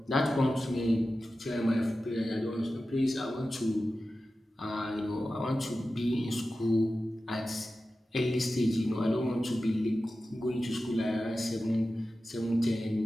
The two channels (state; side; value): normal; both; correlation 0.94